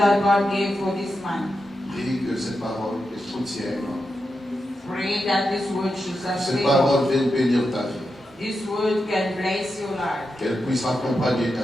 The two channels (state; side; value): normal; both; correlation 0.88